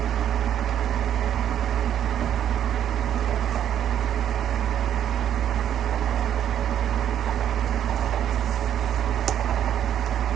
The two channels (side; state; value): left; quieter; 10.1 dB